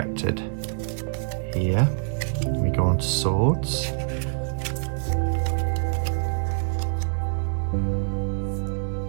here. We go on to swords.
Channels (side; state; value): left; silent; 61 dB below the other